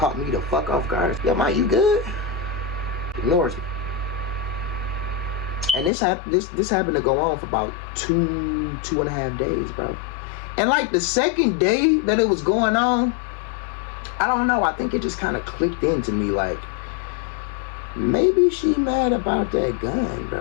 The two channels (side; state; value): right; drops out; at 5.9 s